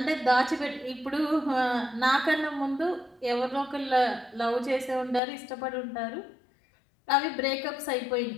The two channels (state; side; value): drops out; right; at 5.2 s